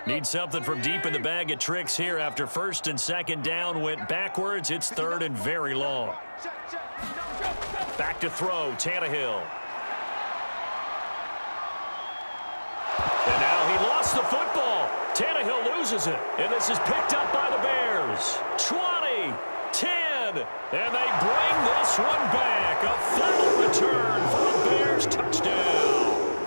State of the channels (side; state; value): both; inverted; correlation -1.00